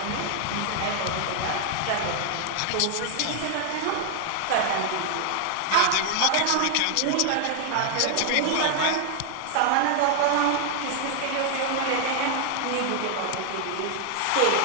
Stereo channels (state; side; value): different; both; correlation 0.00